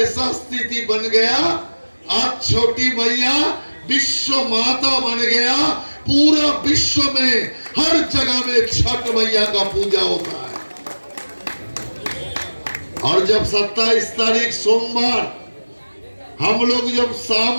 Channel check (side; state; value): both; inverted; correlation -1.00